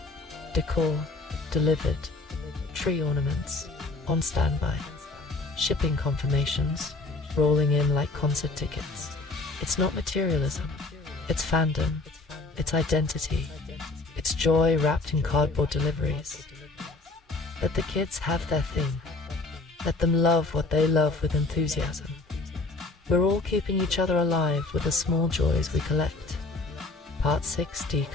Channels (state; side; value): quieter; right; 3.3 dB